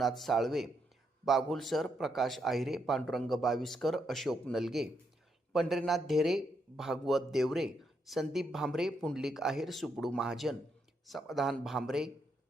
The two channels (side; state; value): both; normal; correlation 0.79